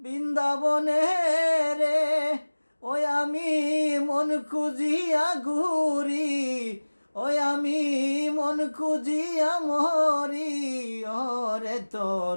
রে, ওই আমি মন খুঁজিয়া ঘুরি, ওই আমি মন খুঁজিয়া মরি। ওরে তোর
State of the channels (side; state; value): both; inverted; correlation -1.00